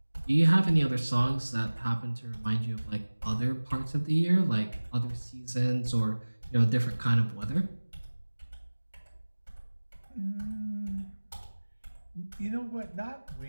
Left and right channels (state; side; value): inverted; both; correlation -1.00